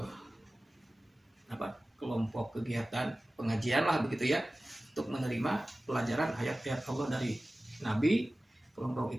kelompok kegiatan pengajian lah begitu ya, untuk menerima pelajaran ayat-ayat Allah dari Nabi. Kelompok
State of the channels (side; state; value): both; normal; correlation 0.96